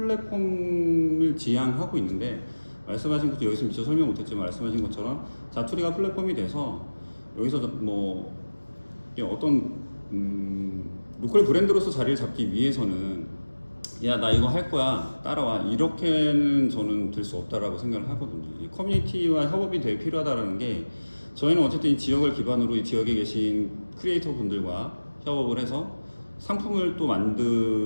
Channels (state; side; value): inverted; both; correlation -1.00